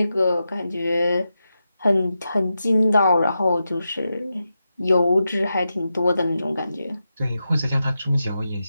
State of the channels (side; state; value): both; inverted; correlation -0.89